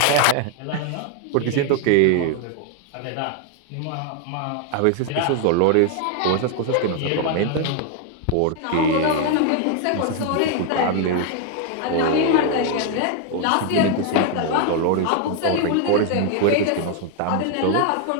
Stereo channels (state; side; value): different; both; correlation 0.00